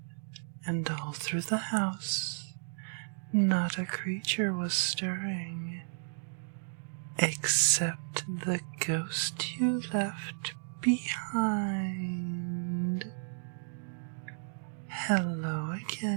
and all through the house not a creature was stirring, except the ghost you left behind. Hello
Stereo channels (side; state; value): left; silent; digital silence